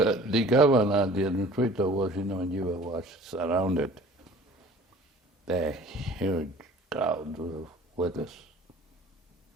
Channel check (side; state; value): both; normal; correlation 0.47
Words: governor, the administrator was in Nigeria, was surrounded by a huge crowd of workers,